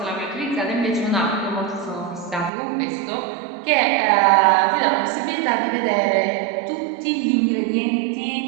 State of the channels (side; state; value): left; drops out; at 2.5 s